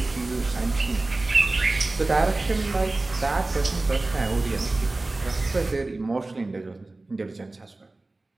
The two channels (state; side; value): quieter; left; 3.1 dB